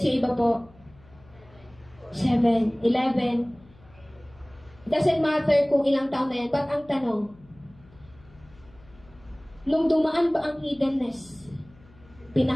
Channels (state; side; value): noise; left; hum, 26 dB below the sound